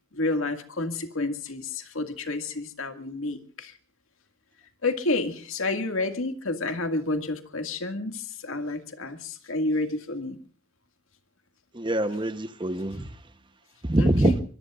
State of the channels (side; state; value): both; normal; correlation 0.45